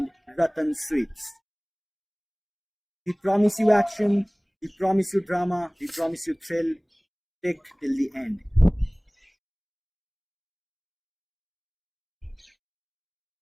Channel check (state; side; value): identical; both; correlation 1.00